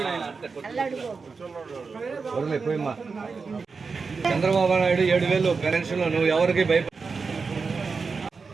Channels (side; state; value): left; quieter; 4.8 dB